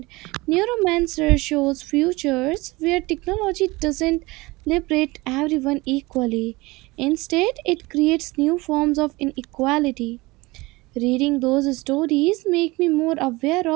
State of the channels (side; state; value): left; quieter; 22.3 dB